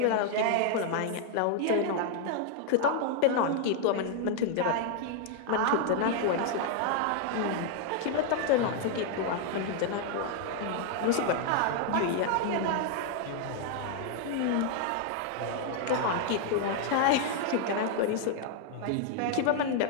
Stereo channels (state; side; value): different; both; correlation 0.00